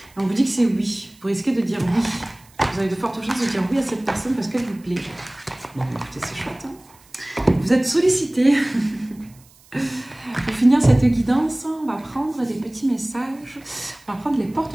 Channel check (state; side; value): noise; right; hiss, 28 dB below the sound